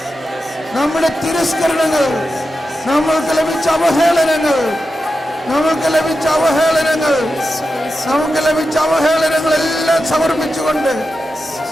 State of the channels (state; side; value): normal; both; correlation 0.90